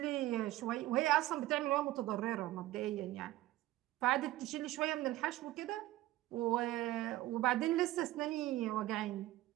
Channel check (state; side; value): quieter; left; 16.2 dB